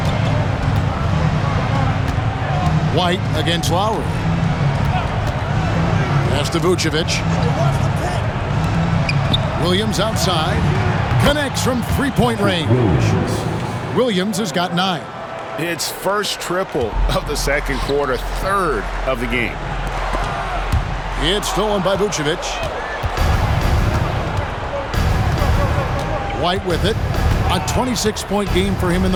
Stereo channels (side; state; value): both; identical; correlation 1.00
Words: White against Lowry. Pass to Vucevic. Williams outside. Connects from three-point range. Williams has got 9. It's first triple of the second quarter, third of the game. It's stolen by Vucevic. White with it. A 26-point game for him in